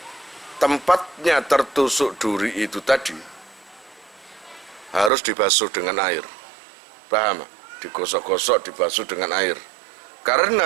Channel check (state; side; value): drops out; left; at 5.1 s